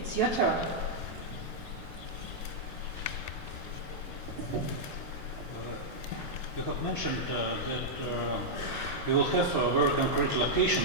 your turn. You have mentioned that you will have a very concrete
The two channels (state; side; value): late; right; 2.8 ms